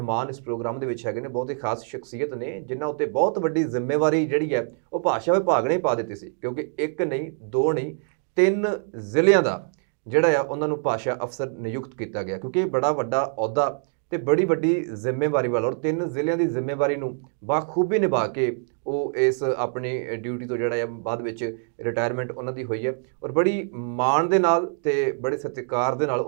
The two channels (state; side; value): silent; left; 62 dB below the other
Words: ਇਸ ਪ੍ਰੋਗਰਾਮ ਦੇ ਵਿੱਚ ਹੈਗੇ ਨੇ ਬਹੁਤ ਹੀ ਖਾਸ ਸ਼ਖਸੀਅਤ ਨੇ, ਜਿਨ੍ਹਾਂ ਉੱਤੇ ਬਹੁਤ ਵੱਡੀ ਜ਼ਿੰਮੇਵਾਰੀ ਜਿਹੜੀ ਹੈ ਉਹ ਭਾਸ਼ਾ ਵਿਭਾਗ ਨੇ ਪਾ ਦਿੱਤੀ ਸੀ। ਕਿਉਂਕਿ ਇੱਕ ਨਹੀਂ, ਦੋ ਨਹੀਂ, 3 ਜ਼ਿਲ੍ਹਿਆਂ ਦਾ ਜਿਹੜਾ ਆ ਉਹਨਾਂ ਨੂੰ ਭਾਸ਼ਾ ਅਫਸਰ ਨਿਯੁਕਤ ਕੀਤਾ ਗਿਆ, ਕਿਉਂਕਿ ਇਹ ਬੜਾ ਵੱਡਾ ਅਹੁਦਾ ਤੇ ਬੜੀ ਵੱਡੀ ਜ਼ਿੰਮੇਵਾਰੀ ਵਾਲਾ ਔਰ 3 ਜ਼ਿਲ੍ਹਿਆਂ ਦੀ ਜ਼ਿੰਮੇਵਾਰੀ ਨੂੰ ਬਾਖੂਬੀ ਨਿਭਾ ਕੇ ਉਹ ਇਸ ਆਪਣੀ ਡਿਊਟੀ ਤੋਂ ਜਿਹੜਾ ਆ ਬਾਅਦ ਵਿੱਚ ਰਿਟਾਇਰਮੈਂਟ ਉਹਨਾਂ ਦੀ ਹੋਈ ਹੈ ਔਰ ਬੜੀ ਮਾਣ ਦੇ ਨਾਲ ਤੇ ਬੜੇ ਸਤਿਕਾਰ ਦੇ ਨਾਲ